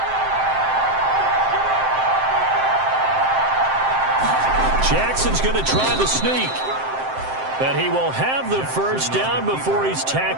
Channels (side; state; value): left; late; 7.7 ms